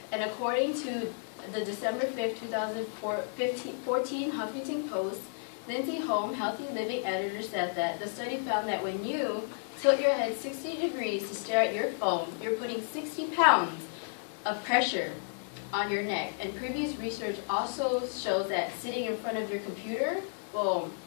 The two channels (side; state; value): right; silent; 56 dB below the other